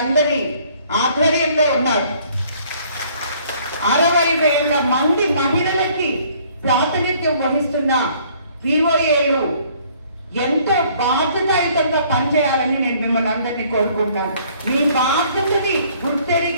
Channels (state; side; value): inverted; both; correlation -0.60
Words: ఆధ్వర్యంలో ఉన్నారు. 60,000 మంది మహిళలకి ప్రాతినిధ్యం వహిస్తున్న వీఓఏలు ఎంతో బాధ్యతాయుతంగా పనిచేయాలని నేను మిమ్మల్ని అందరినీ కోరుకుంటున్నాను. మీ బాధ్యతని